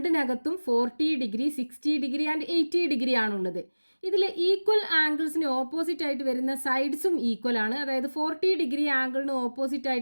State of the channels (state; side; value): inverted; both; correlation -1.00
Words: 40 ഡിഗ്രി 60 ഡിഗ്രി ആൻഡ് 80 ഡിഗ്രി ആണുള്ളത്. ഇതിൽ ഈക്വൽ ആംഗിൾസിന് ഓപ്പോസിറ്റ് ആയിട്ട് വരുന്ന സൈഡ്സും ഈക്വൽ ആണ്. അതായത് 40 ഡിഗ്രി ആംഗിളിന് ഓപ്പോസിറ്റ്